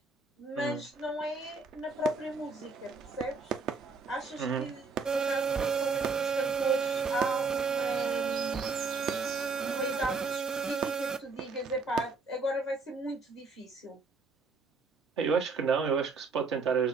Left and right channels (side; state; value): left; quieter; 4.2 dB